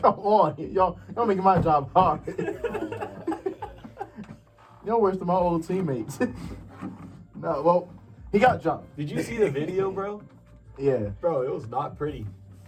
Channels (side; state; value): both; identical; correlation 1.00